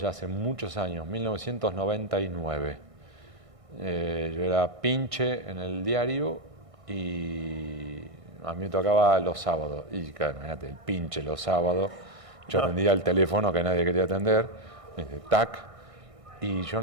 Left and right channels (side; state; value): left; late; 1.6 ms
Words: hace muchos años, 1999. Yo era pinche en el diario y a mí me tocaba los sábados. Y claro, imagínate, el pinche los sábados. Yo atendía el teléfono que nadie quería atender, tac. Y yo